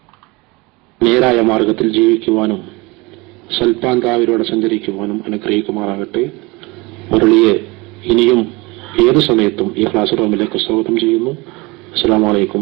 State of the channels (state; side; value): quieter; left; 24.6 dB